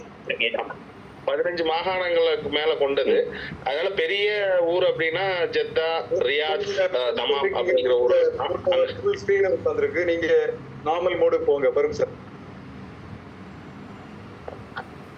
15 மாகாணங்களுக்கு மேல கொண்டது. அதனால பெரிய ஊர் அப்படின்னா ஜெத்தா, ரியாத், தமாம் அப்படிங்கிற ஊர். நீங்க நார்மல் மோடு போங்க பருக் சார்.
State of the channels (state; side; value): identical; both; correlation 1.00